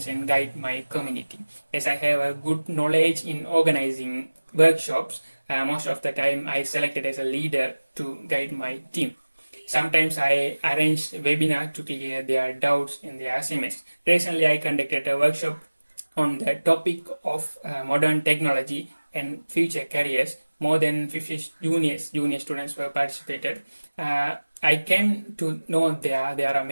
and guide my community. As I have a good knowledge in organizing workshops, most of the time I selected as a leader to guide my team. Sometimes I arrange webinar to clear their doubts in their assignments. Recently, I conducted a workshop on the topic of modern technology and future careers. More than 50 junior students were participated. I came to know there are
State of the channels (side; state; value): both; inverted; correlation -1.00